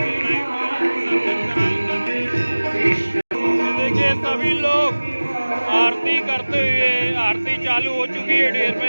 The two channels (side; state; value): both; inverted; correlation -1.00